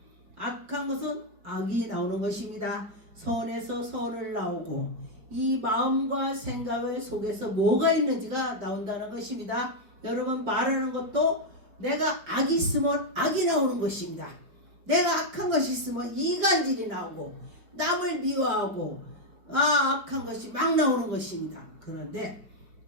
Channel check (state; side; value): late; left; 4.9 ms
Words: 악한 것은 악이 나오는 것입니다. 선에서 선을 나오고 이 마음과 생각을 속에서 뭐가 있는지가 나온다는 것입니다. 여러분 말하는 것도 내가 악이 있으면 악이 나오는 것입니다. 내가 악한 것이 있으면 이간질이 나오고 남을 미워하고 악한 것이 막 나오는 것입니다. 그런데